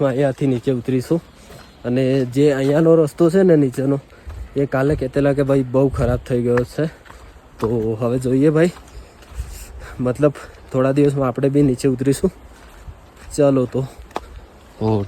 અહીંયાથી નીચે ઉતરીશું. અને જે અહીંયાનો રસ્તો છે ને નીચેનો, એ કાલે કહેતેલા કે ભાઈ બહુ ખરાબ થઈ ગયો છે. તો હવે જોઈએ ભાઈ, મતલબ થોડા દિવસમાં આપણે બી નીચે ઉતરીશું. ચાલો તો. ઓ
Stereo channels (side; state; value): both; identical; correlation 1.00